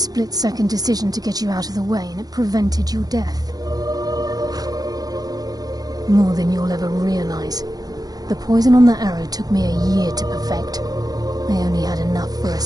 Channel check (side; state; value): left; late; 0.19 ms